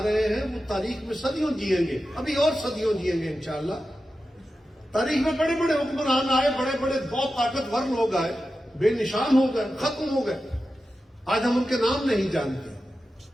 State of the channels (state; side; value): normal; both; correlation 0.92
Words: رہے ہیں، وہ تاریخ میں صدیوں جئیں گے، ابھی اور صدیوں جئیں گے انشاءاللہ۔ تاریخ میں بڑے بڑے حکمران آئے، بڑے بڑے بہت طاقتور لوگ آئے، بے نشان ہو گئے، ختم ہو گئے، آج ہم ان کے نام نہیں جانتے۔